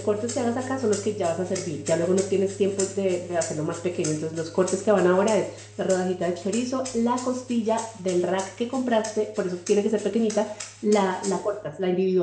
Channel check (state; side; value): identical; both; correlation 1.00